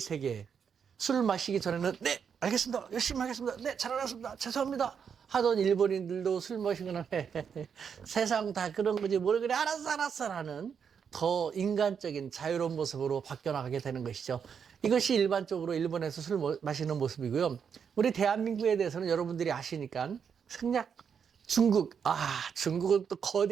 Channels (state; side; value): quieter; left; 7.0 dB